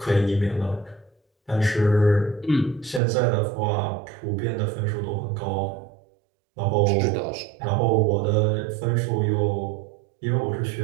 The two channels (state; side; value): drops out; left; at 3.0 s